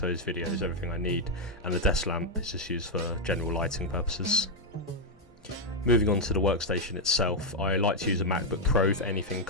videos, everything I need, and the desk lamp is just used for general lighting purposes. Moving on to the workstation itself, I like to use a MacBook Pro for anything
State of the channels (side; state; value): both; normal; correlation 0.01